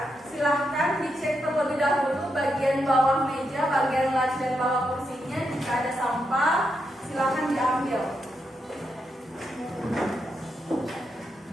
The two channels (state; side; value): normal; both; correlation 0.83